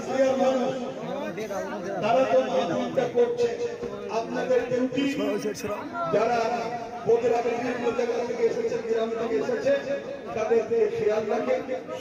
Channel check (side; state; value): both; identical; correlation 1.00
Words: মানুষ, তারা তো মাহফিলটা করছে, আপনাদের ডিউটি যারা বগুড়া বিভিন্ন জায়গা থেকে এসেছে, গ্রাম থেকে এসেছে, তাদেরকে খেয়াল রাখে